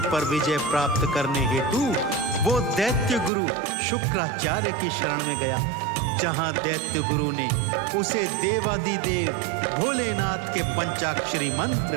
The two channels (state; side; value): drops out; left; at 3.3 s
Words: पर विजय प्राप्त करने हेतु वो दैत्य गुरु शुक्राचार्य की शरण में गया, जहां दैत्य गुरु ने उसे देवादिदेव भोलेनाथ के पंचाक्षरी